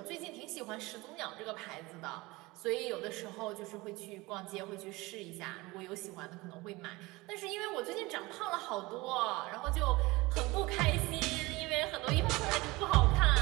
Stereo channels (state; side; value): quieter; left; 22.2 dB